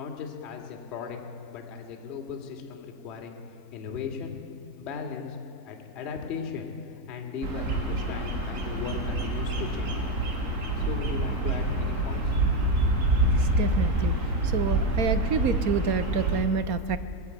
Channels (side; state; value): left; late; 4.3 ms